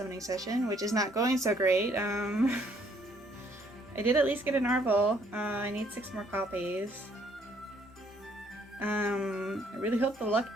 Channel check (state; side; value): normal; both; correlation 0.65